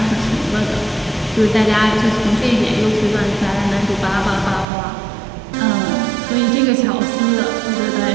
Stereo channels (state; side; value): drops out; left; at 4.7 s